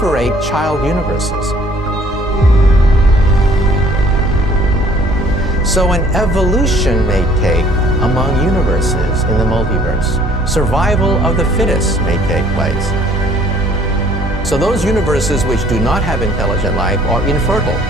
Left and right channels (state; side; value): normal; both; correlation 0.58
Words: child universes. So an evolution may take among universes in the multiverse. Survival of the fittest may take place. So those universes which do not have intelligent life are infertile.